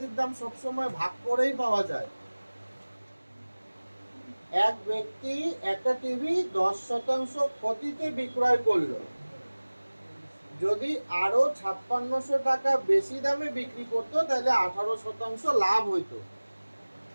দাম সবসময় ভাগ করেই পাওয়া যায়। এক ব্যক্তি একটা টিভি 10% ক্ষতিতে বিক্রয় করলো। যদি আরো 5600 টাকা বেশি দামে বিক্রি করতো তাহলে 18% লাভ হইতো।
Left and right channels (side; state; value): both; inverted; correlation -1.00